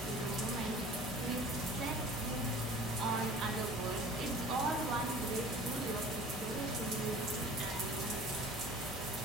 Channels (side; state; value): both; normal; correlation 0.44